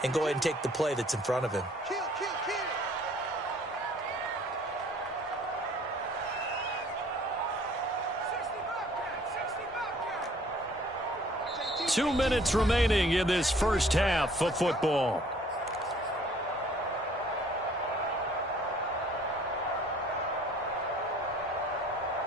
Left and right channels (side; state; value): both; normal; correlation 0.56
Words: and go ahead and take the play that's in front of him. 2 minutes remaining in this first half of football.